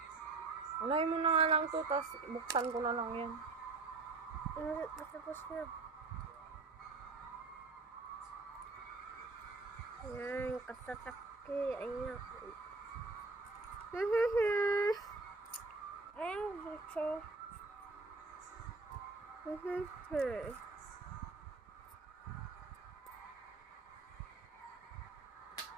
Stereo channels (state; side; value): quieter; left; 3.8 dB